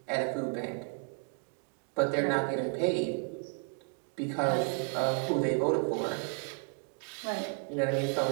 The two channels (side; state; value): left; quieter; 39.0 dB